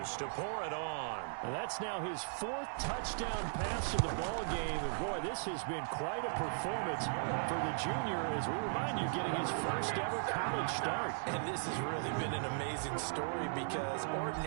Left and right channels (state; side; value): silent; left; digital silence